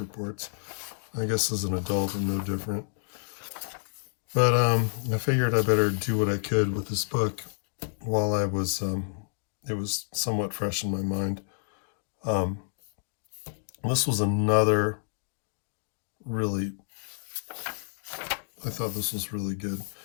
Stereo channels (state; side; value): silent; right; digital silence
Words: I guess as an adult, I'm no different. But I figured I better do what I could with this book while I was, it was somewhat fresh in my mind. This was another really, I thought this was really good.